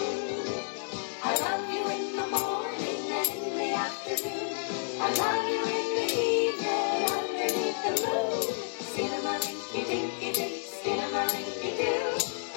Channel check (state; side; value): silent; right; digital silence